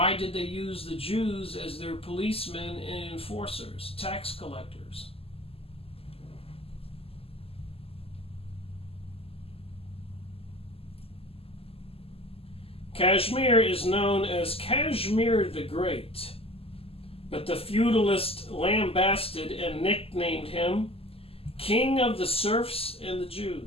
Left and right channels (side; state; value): right; late; 0.28 ms